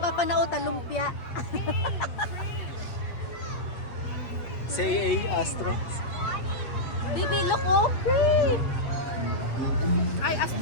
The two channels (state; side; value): late; right; 8.3 ms